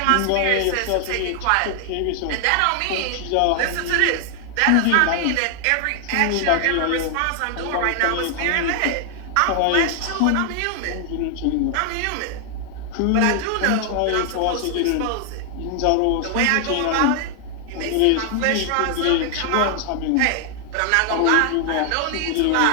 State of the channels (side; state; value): both; different; correlation 0.00